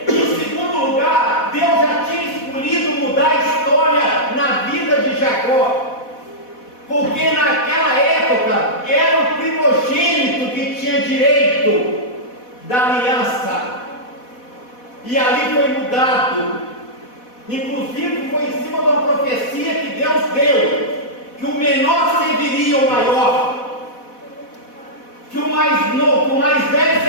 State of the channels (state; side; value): late; right; 4.1 ms